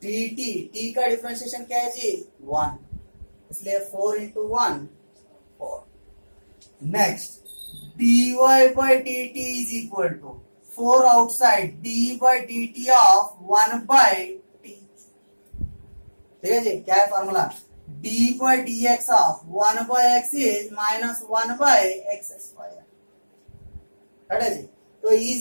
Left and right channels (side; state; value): both; inverted; correlation -1.00